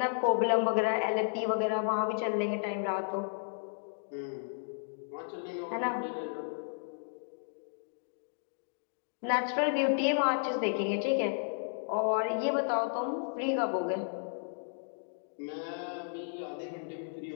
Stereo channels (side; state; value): right; silent; digital silence